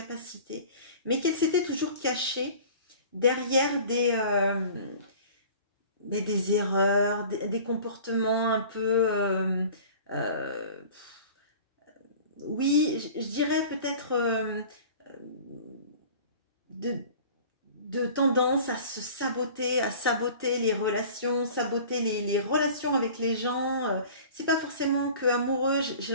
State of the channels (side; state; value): both; inverted; correlation -0.43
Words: mais qu'elle s'était toujours cachée derrière des erreurs, des comportements un peu... oui, je dirais peut-être de tendance à se saboter, à saboter les relations, saboter les relations avec les gens. C'est pas forcément que amoureux. J'ai